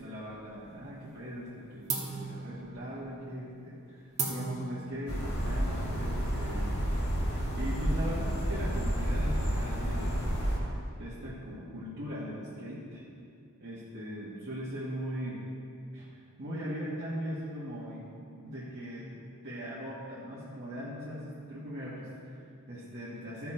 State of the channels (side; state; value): both; normal; correlation 0.77